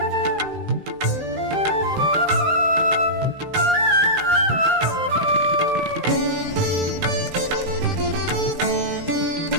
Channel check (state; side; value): late; left; 16 ms